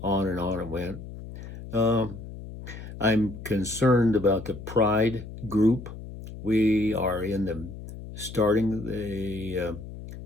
on it went. I'm concerned about the Pride group. We are starting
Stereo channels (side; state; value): left; noise; hum, 12 dB below the sound